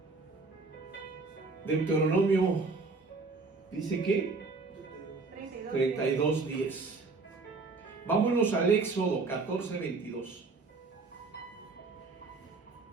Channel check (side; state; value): left; quieter; 3.9 dB